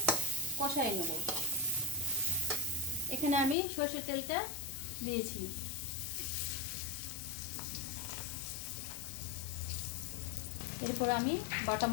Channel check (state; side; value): drops out; right; at 3.6 s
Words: কষাই নেব। এখানে আমি সরষের তেলটা দিয়েছি। এরপর আমি বাটা